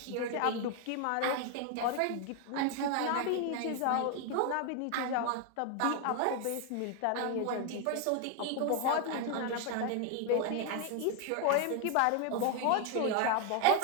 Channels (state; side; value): different; both; correlation 0.01